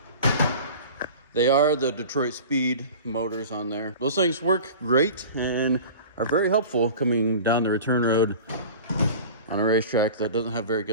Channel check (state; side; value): inverted; both; correlation -0.38